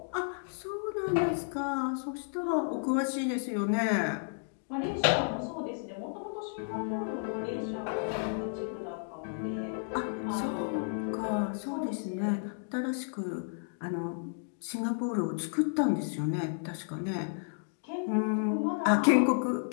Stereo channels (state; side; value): silent; right; digital silence